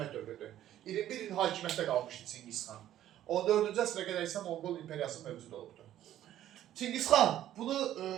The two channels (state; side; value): quieter; left; 12.3 dB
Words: dövrüdür. 21 il hakimiyyətdə qalmışdı Çingizxan. 14-cü əsrə qədər isə Monqol İmperiyası mövcud olubdur. Çingizxan, bunu